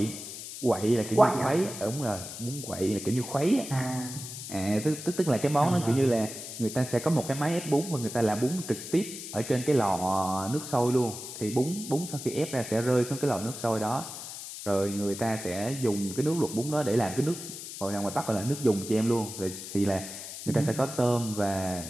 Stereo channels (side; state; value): left; noise; hiss, 10 dB below the sound